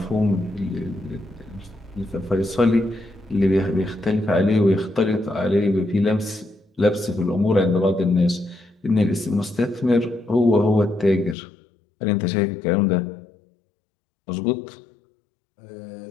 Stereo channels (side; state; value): right; drops out; at 11.4 s